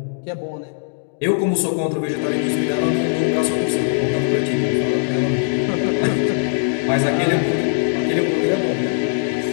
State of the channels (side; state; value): right; silent; digital silence